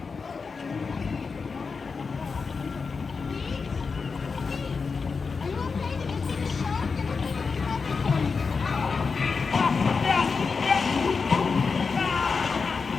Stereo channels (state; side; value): quieter; right; 5.0 dB